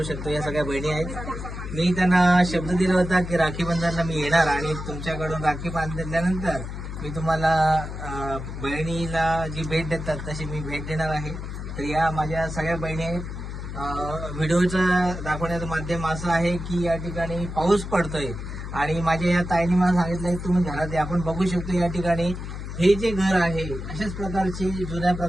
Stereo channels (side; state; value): left; noise; hum, 7 dB below the sound